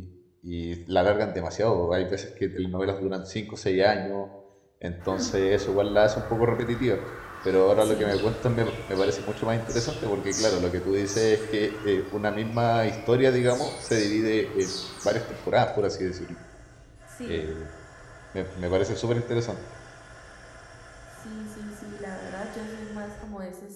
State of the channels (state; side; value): identical; both; correlation 1.00